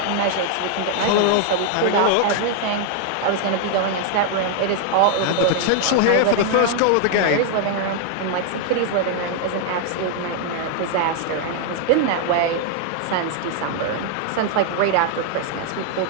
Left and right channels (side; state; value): both; different; correlation 0.00